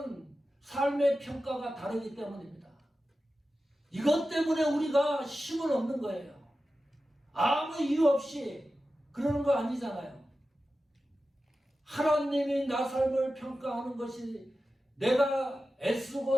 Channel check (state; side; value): normal; both; correlation 0.93